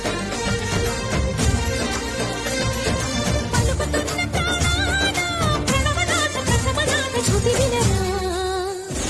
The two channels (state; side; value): identical; both; correlation 1.00